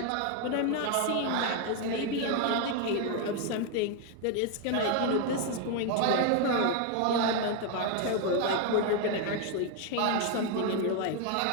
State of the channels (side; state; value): both; different; correlation 0.01